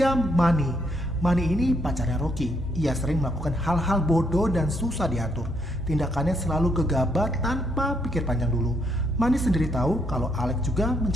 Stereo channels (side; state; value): both; normal; correlation 0.74